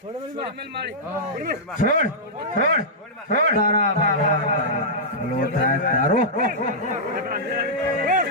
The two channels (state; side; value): normal; both; correlation -0.11